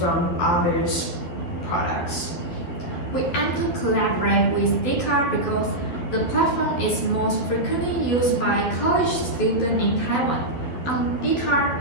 others' products? We aim to collaborate with Dcard because the platform is most frequently used by college students in Taiwan. On Dcard,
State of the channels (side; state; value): right; late; 12 ms